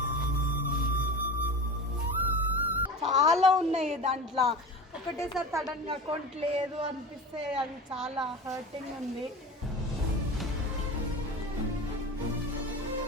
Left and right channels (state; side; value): normal; both; correlation 0.31